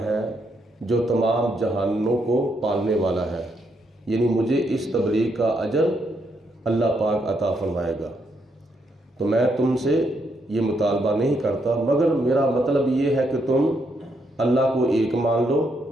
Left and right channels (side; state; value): both; normal; correlation 0.77